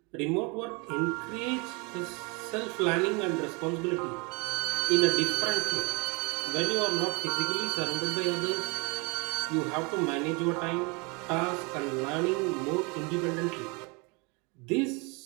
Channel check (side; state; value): left; quieter; 30.0 dB